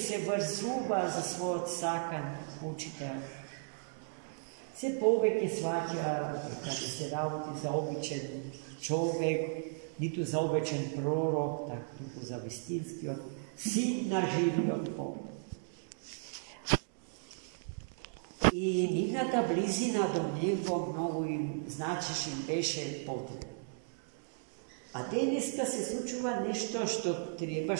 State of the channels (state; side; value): silent; left; digital silence